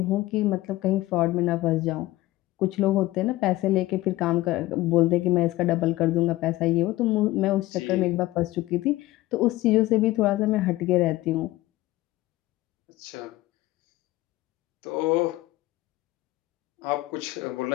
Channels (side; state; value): right; quieter; 17.6 dB